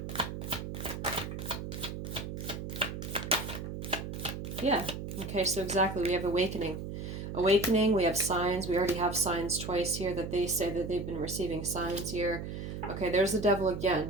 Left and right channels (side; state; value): right; noise; hum, 6 dB below the sound